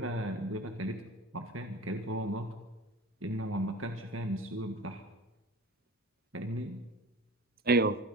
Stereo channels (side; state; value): both; normal; correlation 0.36